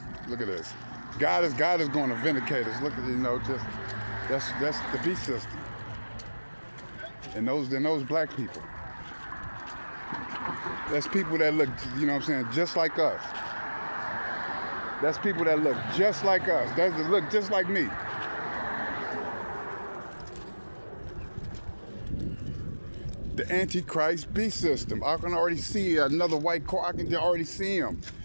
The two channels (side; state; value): both; inverted; correlation -1.00